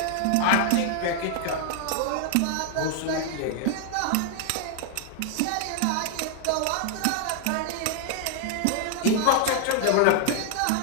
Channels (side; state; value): both; different; correlation 0.00